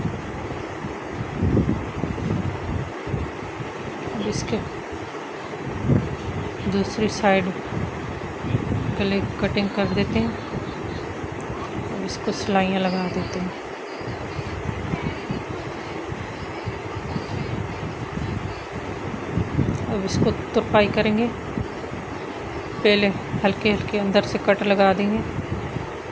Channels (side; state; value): both; identical; correlation 1.00